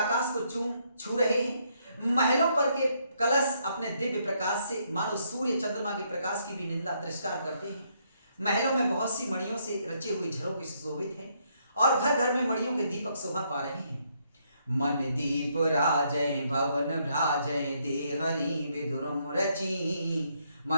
को छू रहे हैं। महलों पर के कलश अपने दिव्य प्रकाश से मानो सूर्य चंद्रमा के प्रकाश की भी निंदा तिरस्कार करते हैं। महलों में बहुत सी मणियों से रचे हुए झरोखे सुशोभित हैं और घर घर में मणियों के दीपक शोभा पा रहे हैं। मन दीप राजय भवन भ्राजय, देहरी विदुरम रची।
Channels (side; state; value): both; inverted; correlation -0.73